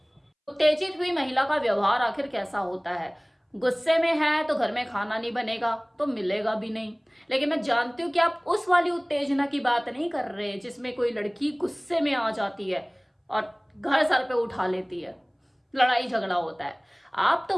उत्तेजित हुई महिला का व्यवहार आखिर कैसा होता है। गुस्से में है तो घर में खाना नहीं बनेगा तो मिलेगा भी नहीं। लेकिन मैं जानती हूँ कि आप उस वाली उत्तेजना की बात नहीं कर रहे जिसमें कोई लड़की गुस्से में आ जाती है और घर सर पे उठा लेती है, लड़ाई झगड़ा होता है। आप तो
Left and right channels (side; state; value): both; identical; correlation 1.00